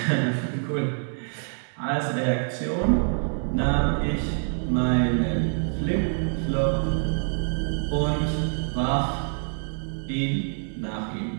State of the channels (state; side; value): silent; left; 58 dB below the other